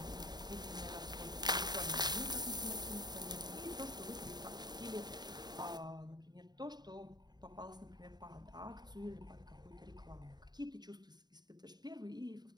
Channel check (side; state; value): left; late; 0.20 ms